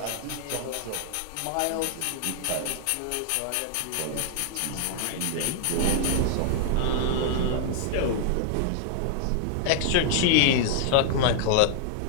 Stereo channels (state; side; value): different; both; correlation 0.00